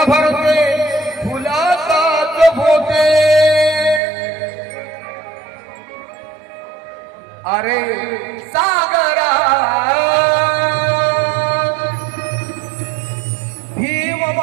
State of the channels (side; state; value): left; drops out; at 4.0 s